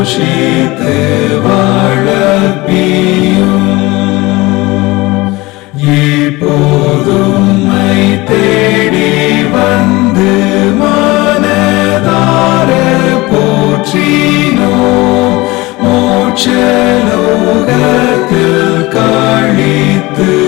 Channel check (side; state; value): right; quieter; 21.5 dB